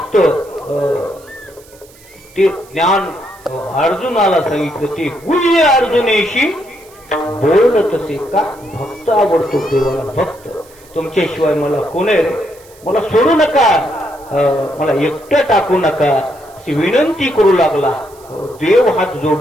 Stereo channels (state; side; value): noise; right; hiss, 26 dB below the sound